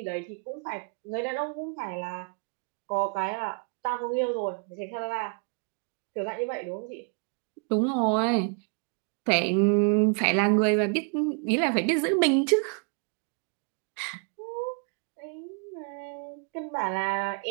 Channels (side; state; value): left; quieter; 38.8 dB